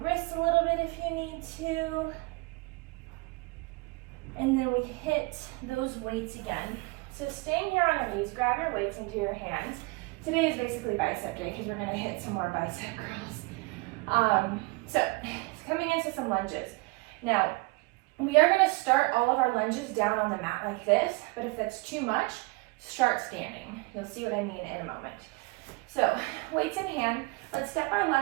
a little bit if you need to. And then we hit those weights again. So staying here on our knees, grab your weights into your hands. Today is basically bicep day because we're going to hit some more bicep curls. So coming into some lunges. Now, we are going to start all of our lunges down on the mat like this, but if that's too much, start standing. You'll see what I mean in a moment. So, weights in hand, let's step our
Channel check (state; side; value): quieter; left; 26.2 dB